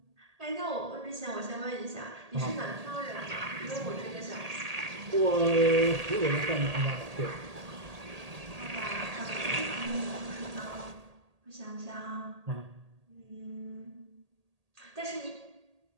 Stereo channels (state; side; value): late; left; 1.8 ms